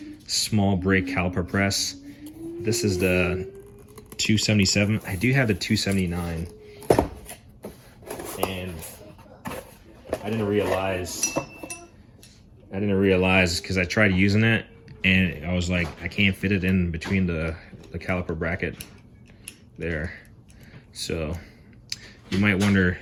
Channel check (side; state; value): both; identical; correlation 1.00